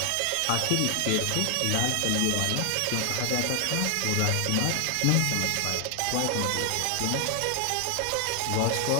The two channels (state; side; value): different; both; correlation 0.00